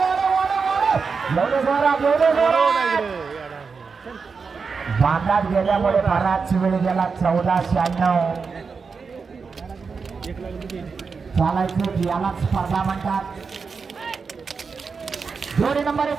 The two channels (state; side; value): quieter; left; 5.2 dB